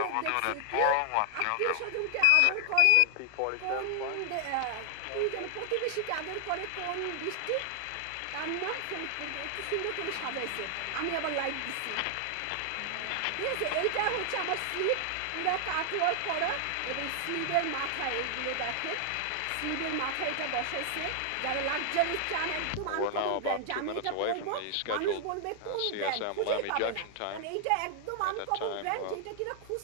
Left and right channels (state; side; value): different; both; correlation 0.00